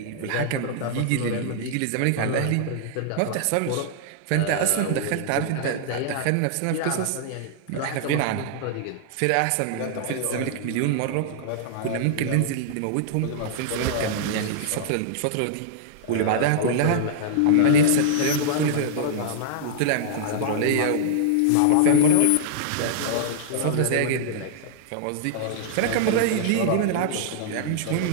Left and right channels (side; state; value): both; different; correlation -0.01